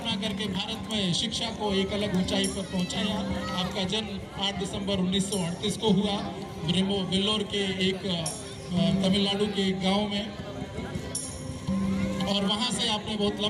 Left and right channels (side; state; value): both; identical; correlation 1.00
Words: करके भारत में शिक्षा को एक अलग ऊंचाई पर पहुंचाया। आपका जन्म 8 दिसंबर 1938 को हुआ वेल्लोर के एक तमिलनाडु के एक गांव में और वहां से आपने बहुत